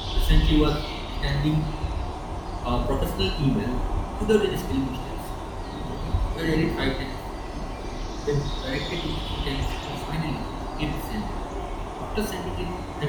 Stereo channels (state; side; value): identical; both; correlation 1.00